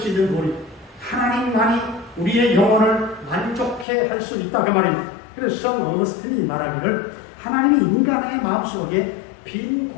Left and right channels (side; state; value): right; drops out; at 3.9 s